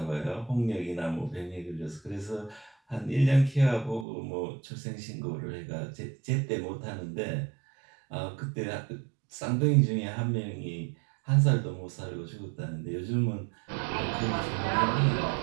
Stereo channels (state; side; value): drops out; left; at 4.0 s